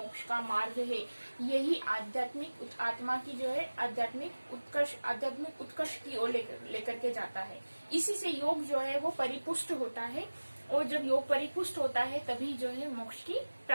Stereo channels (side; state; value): both; inverted; correlation -1.00